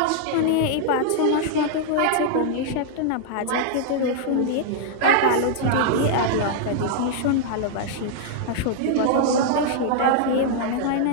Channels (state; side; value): different; both; correlation -0.01